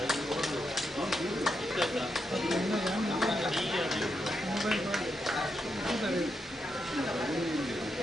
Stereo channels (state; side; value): normal; both; correlation 0.82